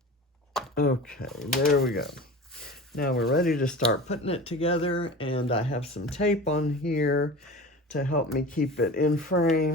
Okay, there we go. Now we're ready to start putting it together, and I have some tape on here to help me keep it in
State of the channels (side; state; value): both; normal; correlation 0.34